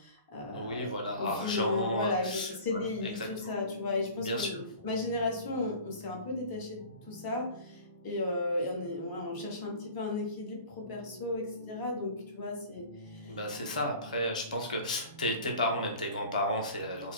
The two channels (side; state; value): both; inverted; correlation -0.42